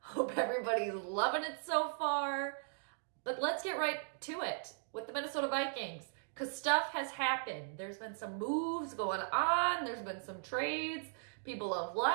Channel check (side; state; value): left; silent; digital silence